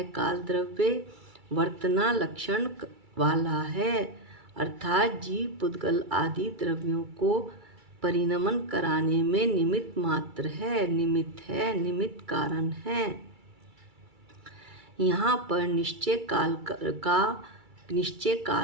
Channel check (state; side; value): late; left; 2.3 ms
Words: काल द्रव्य? वर्तना लक्षण वाला है, अर्थात जीव पुद्गल आदि द्रव्यों को परिणमन कराने में निमित्त मात्र है, निमित्त कारण है। यहाँ पर निश्चय